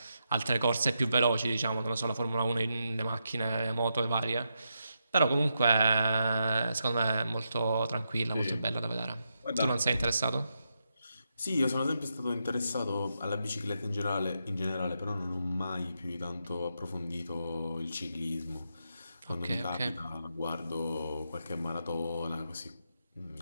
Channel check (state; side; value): inverted; both; correlation -0.84